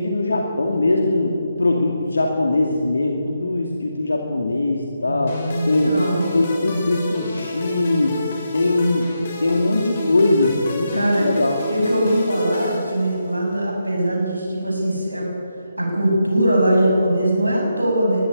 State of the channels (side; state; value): both; inverted; correlation -0.85